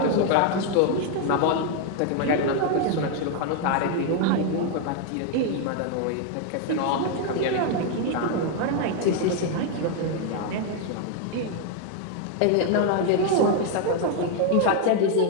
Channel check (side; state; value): both; different; correlation 0.01